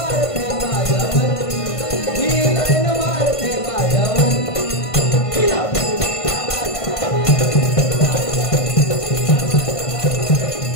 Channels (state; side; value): late; right; 1.5 ms